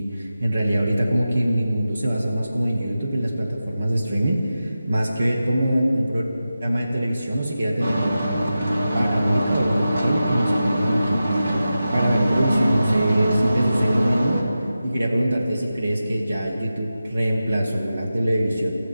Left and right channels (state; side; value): inverted; both; correlation -0.92